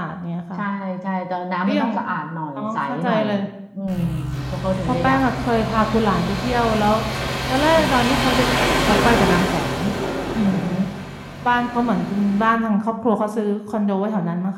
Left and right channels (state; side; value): identical; both; correlation 1.00